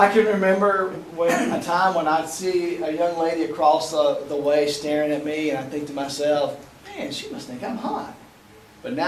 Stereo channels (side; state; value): both; identical; correlation 1.00